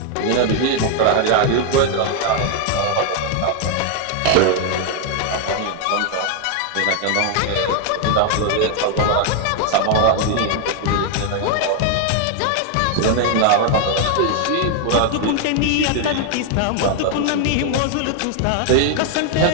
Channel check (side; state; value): both; different; correlation 0.00